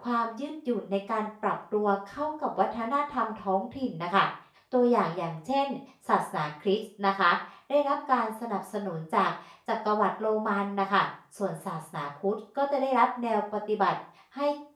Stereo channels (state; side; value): identical; both; correlation 1.00